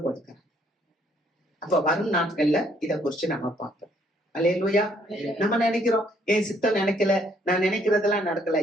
கொடுக்கிறார். அப்ப வரும் நாட்கள்ல இத குறிச்சு நம்ம பார்ப்போம். அல்லேலூயா. நம்ம நினைக்கிறோம், என் சித்தம் நினைக்கல, நான் நினைக்கிறதெல்லாம் நடக்கல.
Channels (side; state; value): both; normal; correlation 0.66